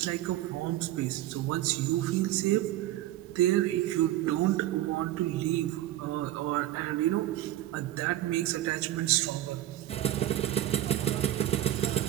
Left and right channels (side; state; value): left; quieter; 14.2 dB